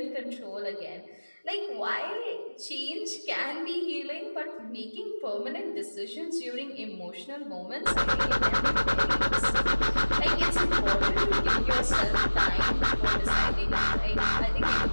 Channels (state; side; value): inverted; both; correlation -1.00